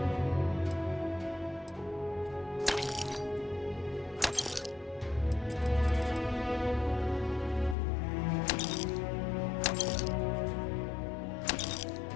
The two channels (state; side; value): drops out; right; at 7.8 s